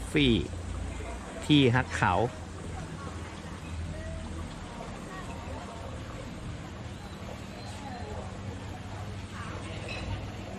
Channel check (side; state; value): both; identical; correlation 1.00